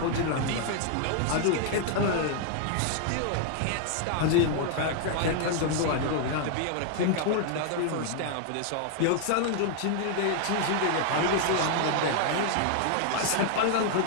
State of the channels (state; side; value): different; both; correlation 0.00